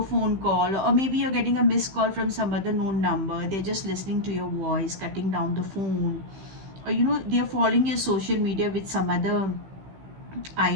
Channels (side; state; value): left; late; 15 ms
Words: call, or maybe you're getting a missed call from some other known number. They're just listening to your voice, cutting down the phone, or they're following your social media with some other